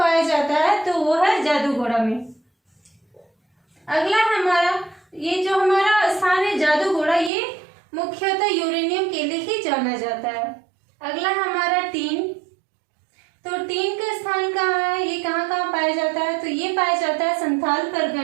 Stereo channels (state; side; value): drops out; left; at 7.3 s